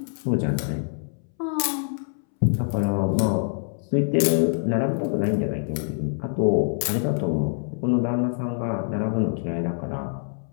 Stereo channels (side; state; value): right; silent; 62 dB below the other